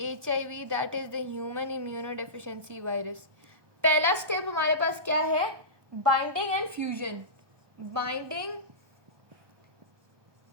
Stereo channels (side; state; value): left; late; 1.2 ms